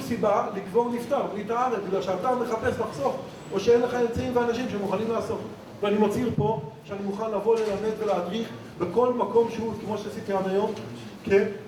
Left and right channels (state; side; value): identical; both; correlation 1.00